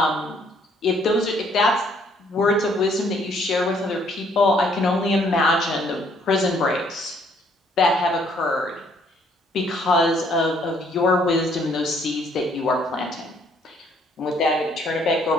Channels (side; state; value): both; normal; correlation 0.65